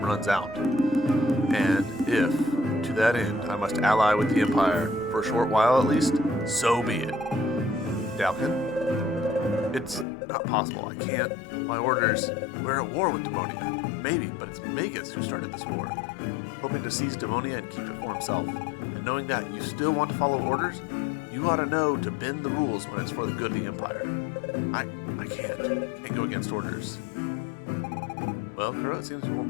out. And if, to that end, I must ally with the Empire, for a short while at least, so be it. Dalkin? It's not possible. I can't. My orders, we're at war with Demonia. Maybe, but it's Magus who started this war. Hoping to seize Demonia and keep it for himself. And knowing that you still want to follow orders, you ought to know to bend the rules when it's for the good of the Empire. I can't go against orders. Well, Kuro, it seems it won't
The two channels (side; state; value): right; drops out; at 10.1 s